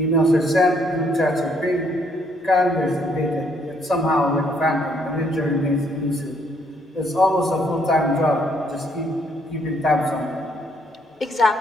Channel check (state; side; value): normal; both; correlation 0.69